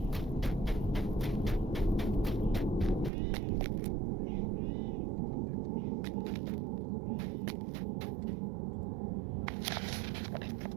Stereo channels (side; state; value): left; drops out; at 3.1 s